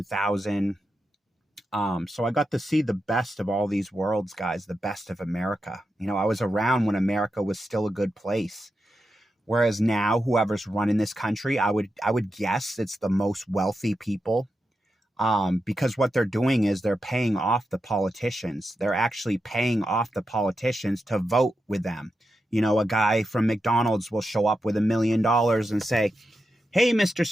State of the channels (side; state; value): both; normal; correlation 0.88